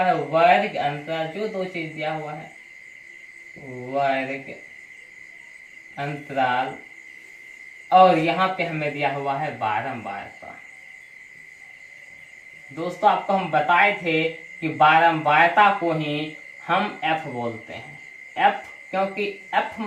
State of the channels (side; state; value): both; identical; correlation 1.00